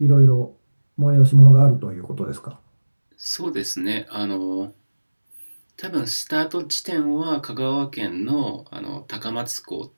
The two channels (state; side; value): inverted; both; correlation -1.00